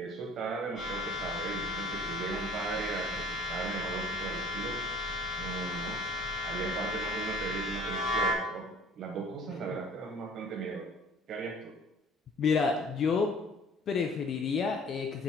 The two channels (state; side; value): normal; both; correlation 0.50